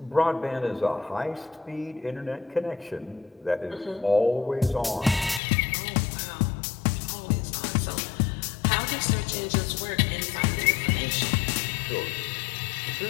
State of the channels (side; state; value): right; drops out; at 5.4 s